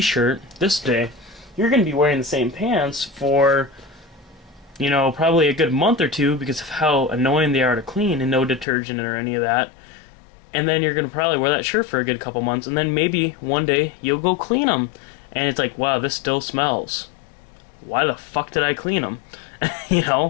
this day. You're gonna be wearing the same pants for probably a good month or two because of how annoying they are to clean and no detergent or any of that. And then you're going to probably wear that shirt for a good couple months, and then maybe one day you'll go clean them. And it's like, wow, this still smells. Why the fuck did I clean them?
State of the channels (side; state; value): right; drops out; at 8.7 s